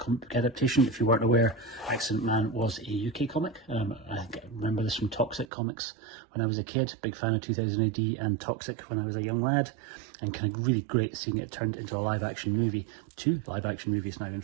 book adaptation. If you weren't aware, Accident Man was a UK comic. I remember this from Toxic Comics when I was a kid, big fan of 2000 AD and Toxic when I was a young lad, and kind of really great seeing it turned into a live action movie. 2 live action movies now, in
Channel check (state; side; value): drops out; left; at 5.5 s